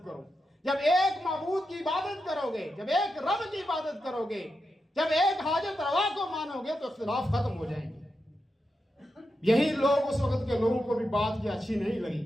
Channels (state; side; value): normal; both; correlation 0.87